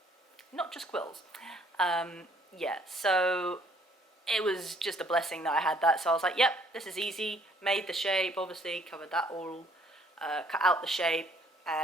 not just quills. Yeah, so it was just a blessing that I had that, so I was like, yep, this is easy. Made the shape, obviously, covered that all, cut out the shape,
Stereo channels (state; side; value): normal; both; correlation 0.63